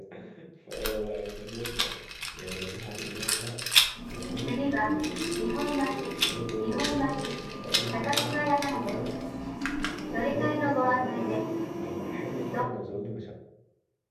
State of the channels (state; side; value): identical; both; correlation 1.00